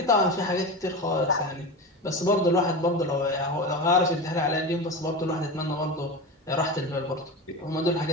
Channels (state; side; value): normal; both; correlation 0.24